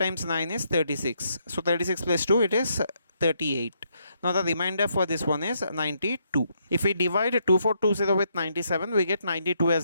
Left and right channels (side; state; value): both; inverted; correlation -0.75